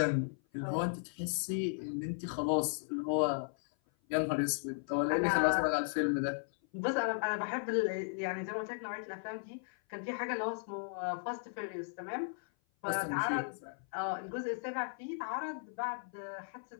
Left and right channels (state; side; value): silent; right; 54 dB below the other